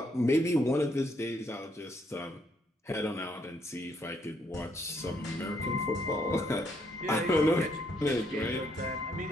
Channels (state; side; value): normal; both; correlation 0.72